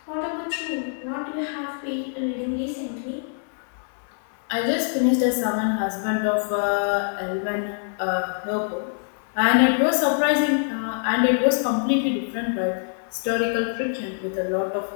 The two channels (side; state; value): right; silent; digital silence